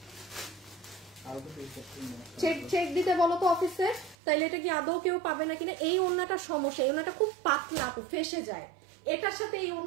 চেক দিতে বলো তো অফিসে, তাইলে এটা কি আদৌ কেউ পাবে না কিনা। এই ওড়নাটার সমস্যা, এই ওড়নাটা খুব পাতলা আপু, ফেসে যায়। এটার সাথে এই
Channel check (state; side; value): drops out; left; at 4.2 s